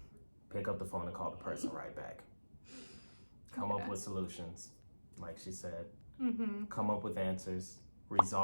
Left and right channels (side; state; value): both; inverted; correlation -1.00